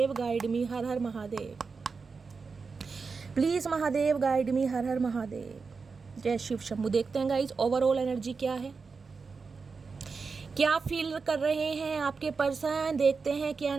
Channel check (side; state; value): left; quieter; 4.8 dB